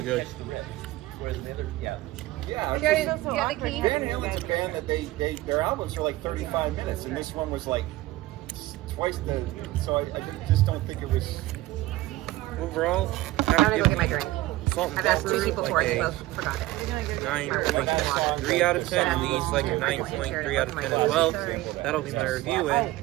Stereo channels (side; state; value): left; quieter; 17.5 dB